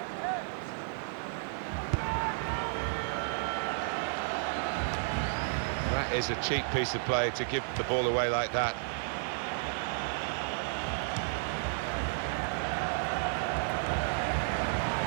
That is a cheap piece of play to give the ball away like that.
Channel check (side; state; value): left; silent; digital silence